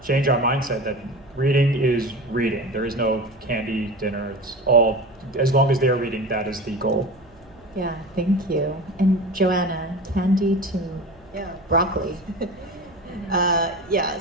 change our mindset that reading is reading. There is no candy dinner. It's all, as long as they are reading, that is the goal. Yeah, thank you. And Joanna, candy to broccoli.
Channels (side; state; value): right; noise; hum, 28 dB below the sound